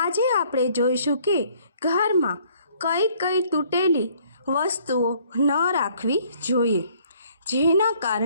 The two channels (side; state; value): both; inverted; correlation -0.61